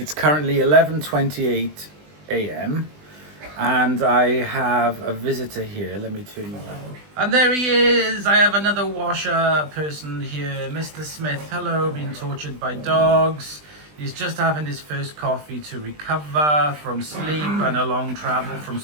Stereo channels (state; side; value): late; left; 20 ms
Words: currently 11:28 a.m. and I have a visitor here. Let me turn you around. And there he is! I have another washer person here, Mr. Smith. Hello, being tortured by dogs. He's just having his first coffee to recover from sleep and a long travel from